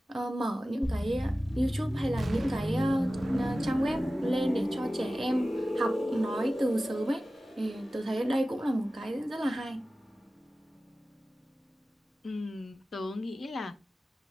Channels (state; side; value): normal; both; correlation 0.96